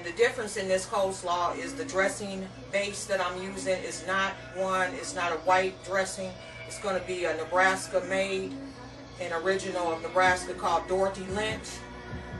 the difference in this coleslaw is the dressing base that I'm using is not a white dressing. It's going to be a Nebraska made, an original of Nebraska called Dorothy Lynch.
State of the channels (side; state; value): both; identical; correlation 1.00